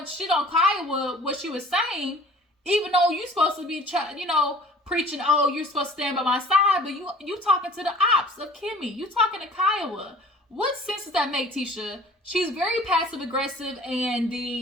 of shit on Kiowa, what she was saying, even though you're supposed to be, preaching, oh, you're supposed to stand by my side, but you talking to the ops of Kimmy. You talking to Kiowa. What sense does that make, Tisha? She's very passive aggressive, and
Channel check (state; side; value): normal; both; correlation 0.48